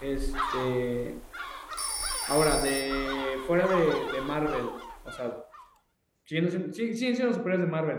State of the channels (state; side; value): identical; both; correlation 1.00